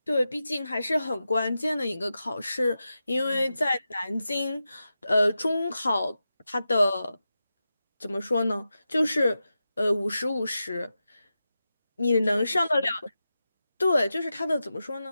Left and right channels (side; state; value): both; inverted; correlation -0.91